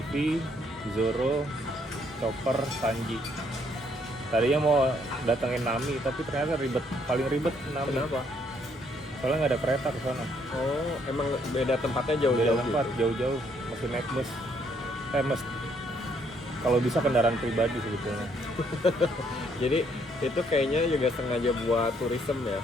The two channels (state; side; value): normal; both; correlation 0.69